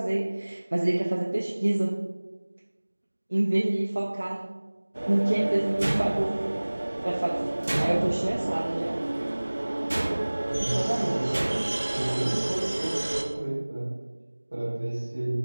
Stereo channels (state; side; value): inverted; both; correlation -1.00